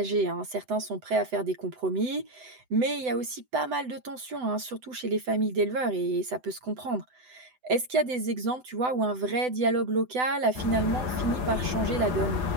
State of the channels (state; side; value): late; left; 7.9 ms